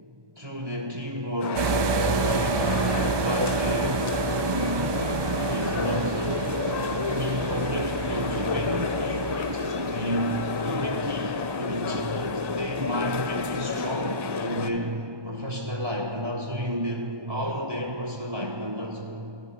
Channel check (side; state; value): left; late; 1.2 ms